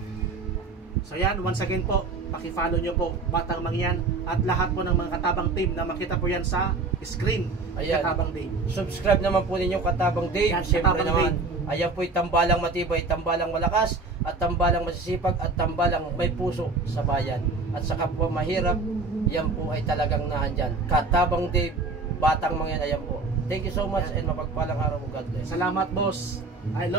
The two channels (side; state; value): left; quieter; 3.8 dB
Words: So yan, once again po, paki-follow nyo po Batang Mangyan at lahat po ng mga Katabang team na makita po yan sa screen. Ayan. Katabang Dave, subscribe naman po ninyo Katabang Dave. Yan, siyempre naman Dave. Ayan po'y tambalang matibay, tambalang malakas, at tambalang masisipag, at tambalang may puso sa bayan. At sa kapwa mahirap, yan po ay talagang naandyan. Katabang Dave, Batang Mangyan, ayan po. Thank you so much and mapagpalang araw mo, God bless. Salamat boss. I